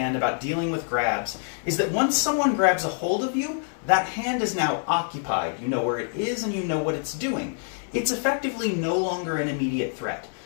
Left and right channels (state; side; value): silent; right; 61 dB below the other